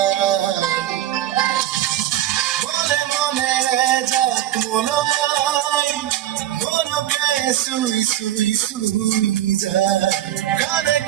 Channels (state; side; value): quieter; left; 12.5 dB